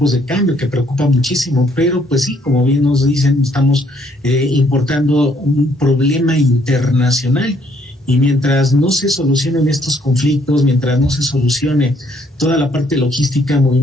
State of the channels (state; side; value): normal; both; correlation 0.67